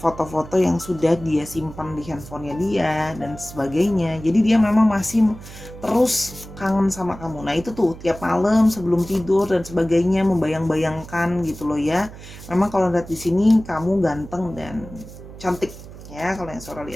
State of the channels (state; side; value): noise; right; hum, 16 dB below the sound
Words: yang sudah dia simpan di handphonenya dia dan sebagainya. Jadi dia memang masih terus kangen sama kamu. Nah itu tuh tiap malam sebelum tidur dan sebagainya membayang-bayangkan gitu loh ya. Memang kalau lihat di sini kamu ganteng dan cantik ya kalau yang Sora